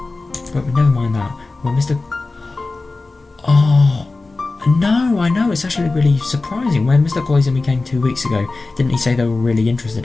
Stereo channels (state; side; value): quieter; right; 3.5 dB